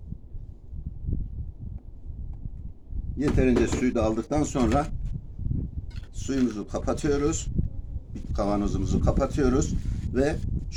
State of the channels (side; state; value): both; identical; correlation 1.00